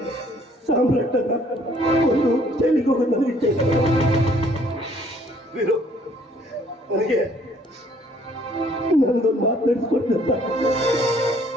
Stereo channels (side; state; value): both; normal; correlation 0.61